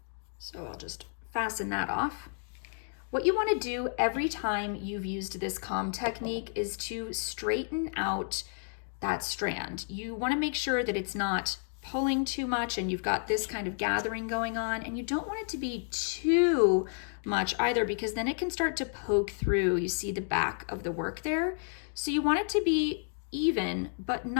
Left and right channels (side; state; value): right; silent; 57 dB below the other